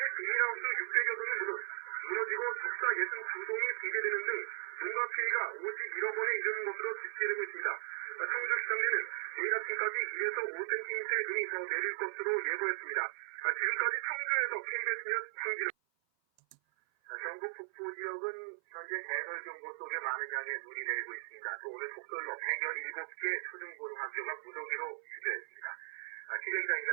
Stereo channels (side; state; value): left; silent; 53 dB below the other